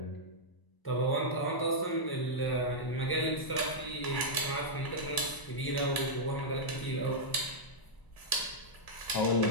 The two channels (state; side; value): late; right; 1.0 ms